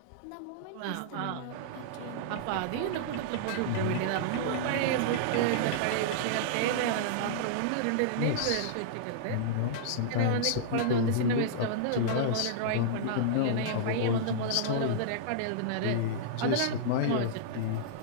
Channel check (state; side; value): different; both; correlation -0.02